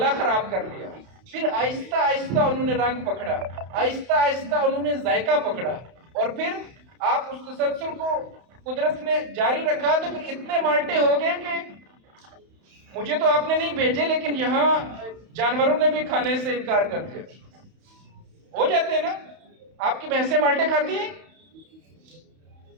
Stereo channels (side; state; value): left; late; 31 ms